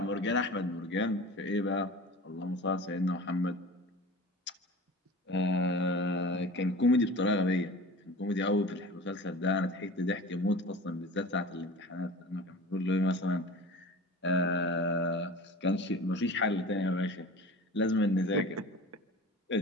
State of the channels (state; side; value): normal; both; correlation 0.38